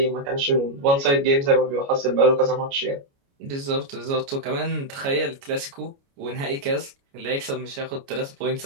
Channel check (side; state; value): left; late; 29 ms